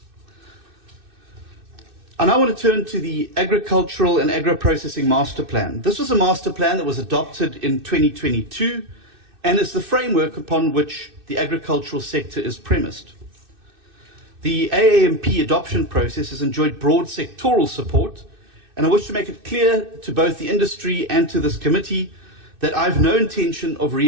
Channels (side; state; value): left; late; 2.6 ms